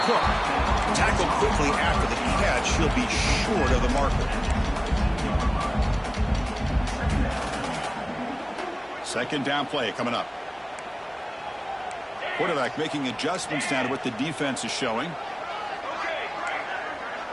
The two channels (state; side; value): identical; both; correlation 1.00